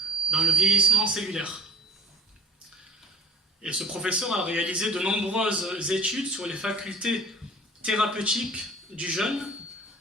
dans le vieillissement cellulaire. Et ce professeur a réalisé de nombreuses études sur les facultés thérapeutiques du jeûne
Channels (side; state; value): both; normal; correlation 0.50